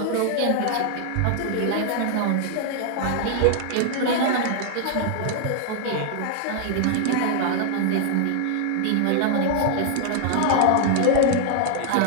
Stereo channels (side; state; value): both; different; correlation 0.00